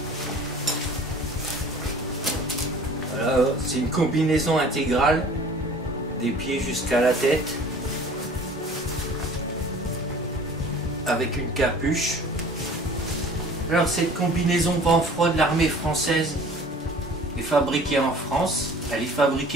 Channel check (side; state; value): both; normal; correlation 0.47